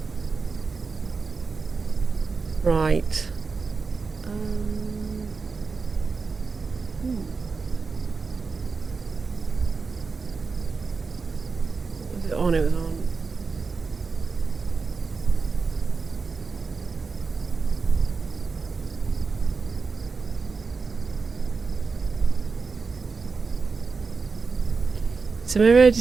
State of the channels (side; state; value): left; quieter; 4.7 dB